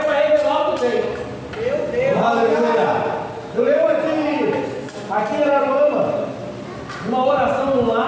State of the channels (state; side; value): identical; both; correlation 1.00